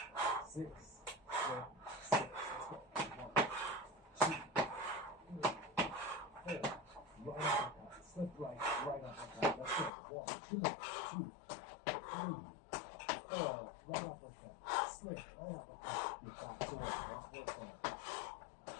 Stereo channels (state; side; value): drops out; right; at 9.9 s